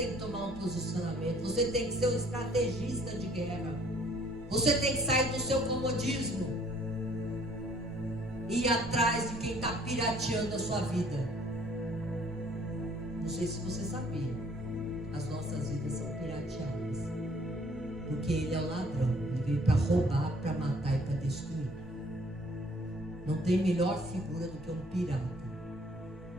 que tomar um posicionamento, você tem que ser um estrategista de guerra. Você tem que sair do seu comodismo e ir atrás de quem está pirateando a sua vida. Não sei se você sabia, as nossas vidas são pirateadas, porque Ele é o ladrão. Ele veio para roubar, para matar e para destruir. Não tem melhor figura do que um pirata.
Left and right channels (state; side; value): normal; both; correlation 0.59